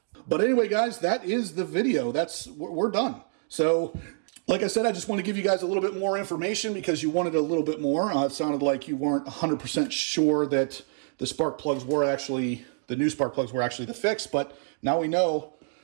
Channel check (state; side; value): silent; left; 60 dB below the other